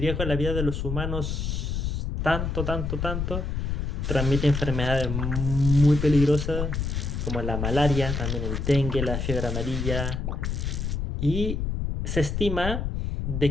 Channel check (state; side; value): noise; left; rumble, 2 dB below the sound